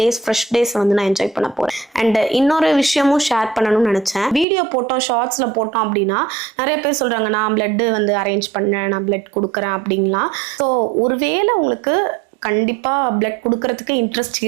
ஃப்ரெஷ் டேஸ் வந்து நான் என்ஜாய் பண்ண போகிறேன். அண்ட் இன்னொரு விஷயமும் ஷேர் பண்ணணும்னு நினச்சேன். வீடியோ போட்டோம், ஷார்ட்ஸில் போட்டோம் அப்படின்னா நிறைய பேர் சொல்கிறாங்க நான் பிளட்டு வந்து அரேஞ்ச் பண்ணேன், நான் பிளட் கொடுக்குறேன் அப்படின்லாம். ஸோ ஒருவேளை உங்களுக்கு கண்டிப்பாக பிளட் கொடுக்கறதுக்கு இன்ட்ரெஸ்ட்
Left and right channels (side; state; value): left; drops out; at 4.5 s